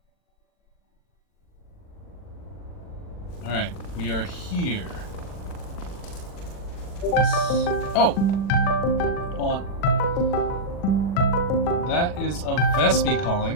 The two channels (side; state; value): right; late; 40 ms